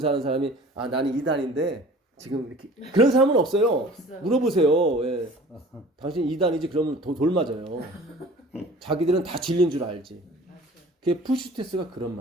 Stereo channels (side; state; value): both; normal; correlation 0.46